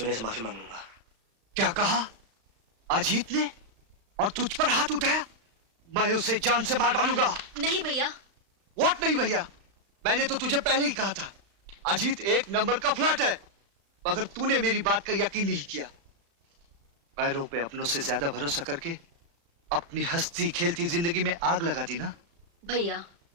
से माफी मांग लूंगा। क्या कहा? अजीत ने? और तुझ पर हाथ उठाया? मैं उसे जान से मार डालूंगा। नहीं भैया। व्हाट नहीं भैया? मैंने तो तुझे पहले ही कहा था, अजीत एक नंबर का फ्लर्ट है, मगर तूने मेरी बात का यकीन नहीं किया। पैरों पे अपनों से ज्यादा भरोसा करके अपनी हंसती खेलती जिंदगी में आग लगा दी ना। भैया,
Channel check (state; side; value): late; left; 35 ms